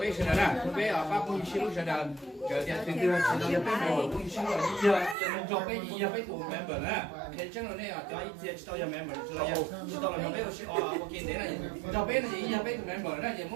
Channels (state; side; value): drops out; left; at 5.2 s